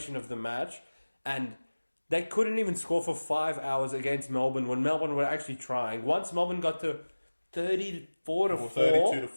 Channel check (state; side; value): inverted; both; correlation -1.00